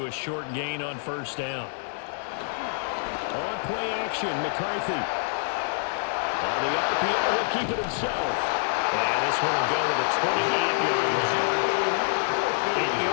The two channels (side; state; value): right; silent; 56 dB below the other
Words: a short gain on 1st down. On play action, McCarthy. On the RPO, he'll keep it himself. And this one will go to the 28-yard line. 8